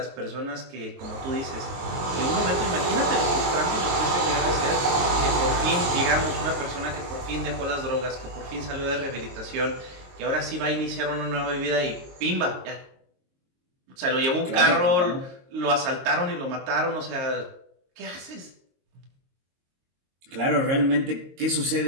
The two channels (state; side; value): late; left; 22 ms